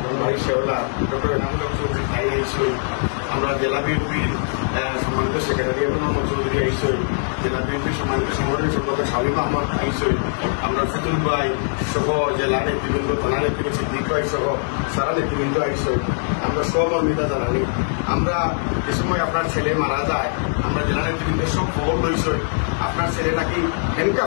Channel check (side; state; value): right; silent; digital silence